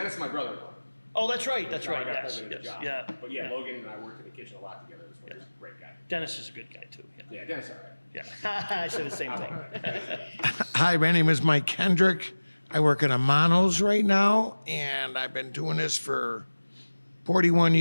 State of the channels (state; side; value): inverted; both; correlation -1.00